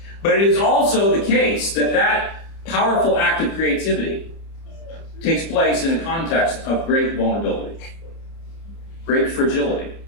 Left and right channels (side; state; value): right; late; 30 ms